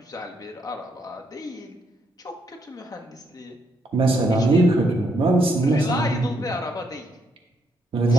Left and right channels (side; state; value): both; normal; correlation 0.75